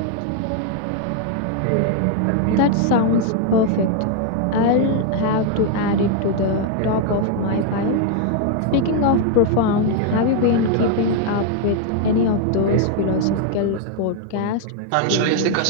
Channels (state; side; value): different; both; correlation 0.00